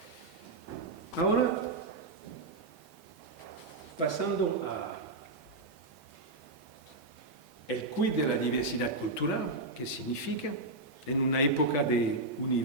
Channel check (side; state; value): left; quieter; 3.1 dB